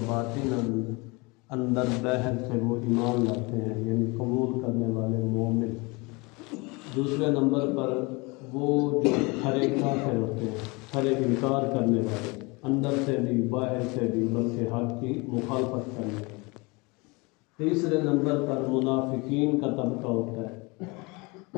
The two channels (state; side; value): quieter; right; 26.9 dB